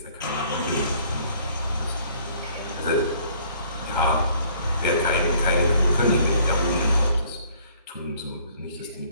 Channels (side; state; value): both; inverted; correlation -0.59